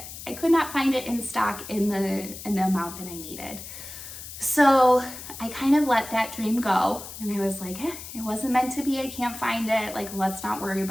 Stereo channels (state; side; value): noise; left; hiss, 12 dB below the sound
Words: I could not find it in stock in the amount that I needed. So I kind of let that dream go, and I was like, it wasn't meant to be. I can't find it. Like, let's not worry